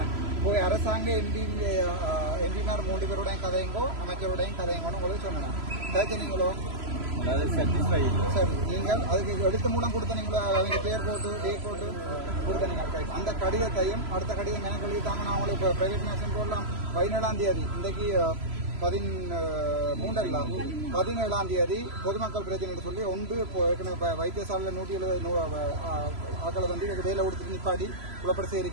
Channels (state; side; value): late; left; 3.0 ms